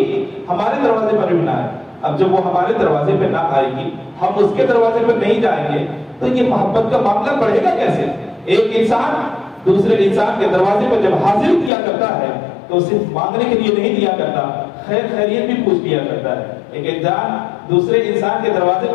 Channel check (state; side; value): drops out; right; at 11.7 s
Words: ہمارے دروازے پر بھی نہ آئے۔ اب جب وہ ہمارے دروازے پہ نہ آئے گی، ہم اس کے دروازے پر نہیں جائیں گے، تو یہ محبت کا معاملہ بڑھے گا کیسے؟ ایک انسان دوسرے انسان کے دروازے پر جب حاضر کیا کرتا ہے تو صرف مانگنے کے لیے نہیں دیا کرتا، خیر خیریت بھی پوچھ لیا کرتا ہے۔ ایک انسان دوسرے انسان کے دروازے